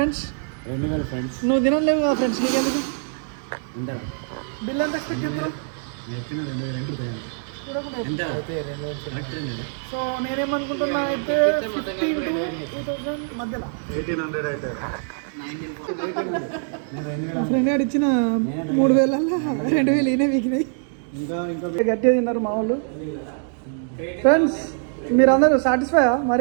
నువ్వు తినలేవు కదా ఫ్రెండ్స్, నీకెందుకు? బిల్ ఎంత ఎక్స్పెక్ట్ చేస్తారు? సో నేనేమనుకుంటున్నా అయితే 15 to 2000 మధ్యలో. 1800 అయితే మా ఫ్రెండ్ గారు ఇచ్చిన 3000 2000 ఈయన వీకినాయి. గట్టిగా తిన్నారు మా వాళ్ళు. ఫ్రెండ్స్ మీరు అందరూ సాటిస్ఫైయా?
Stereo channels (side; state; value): left; silent; digital silence